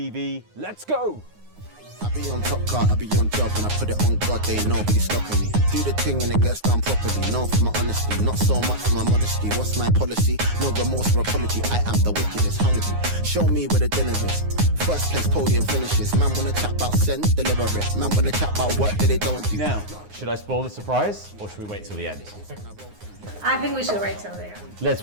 Let's go! I be on top car, I be on job, and I put it on God, they ain't nobody stopping me. Do the thing and it gets done properly, known for my honesty, not so much for my modesty. What's my policy? No remorse or apology, I am the wickedest, hungry. Show me where the dinner is. First place podium finishes. Man wanna chat about send, deliver it. Man wanna chat about work that they don't do. Now, should I spoil the surprise, or should we wait till the end? I think we should wait till the end.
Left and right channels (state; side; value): late; left; 9.6 ms